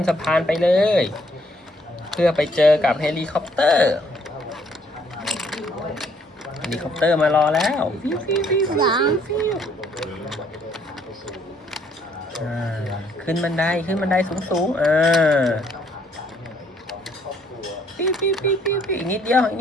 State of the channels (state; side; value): normal; both; correlation 0.66